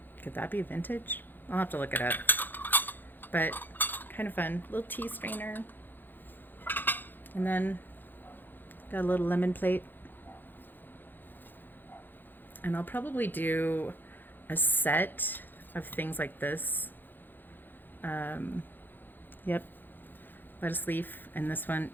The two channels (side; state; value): right; late; 0.091 ms